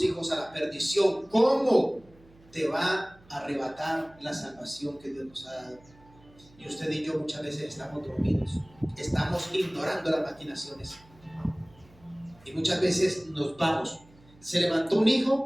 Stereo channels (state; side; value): noise; right; hum, 27 dB below the sound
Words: hijos a la perdición, cómo te va a arrebatar la salvación que Dios nos ha dado. Y usted y yo muchas veces estamos dormidos, estamos ignorando las maquinaciones. Y muchas veces nos vamos. Se levantó un